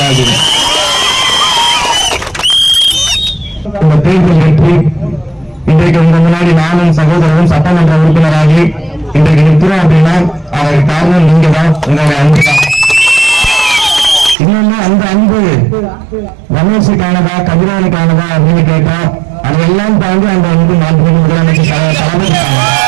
இந்த தேர்தல் வெற்றி இன்றைக்கு உங்க முன்னாடி நானும் சகோதரரும் சட்டமன்ற உறுப்பினராகி இன்றைக்கு நிற்கிறோம் அப்படின்னா அதற்கு காரணம் நீங்க தான், உங்களுடைய அன்பு தான். இன்னொன்னு அந்த அன்பு ரமேஷுக்கானதா கதிரவனுக்கானதா அப்படின்னு கேட்டா அதையெல்லாம் தாண்டி அந்த அன்பு மாண்புமிகு முதலமைச்சர் தளபதிக்கான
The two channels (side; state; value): left; drops out; at 14.4 s